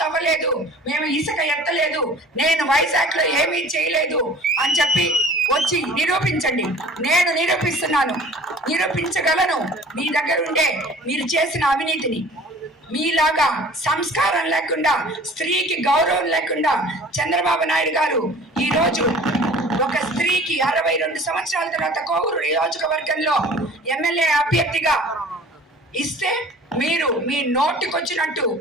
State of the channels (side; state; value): both; normal; correlation 0.46